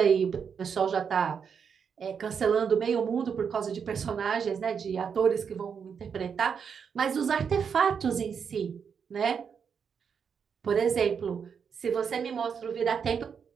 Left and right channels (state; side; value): quieter; left; 6.8 dB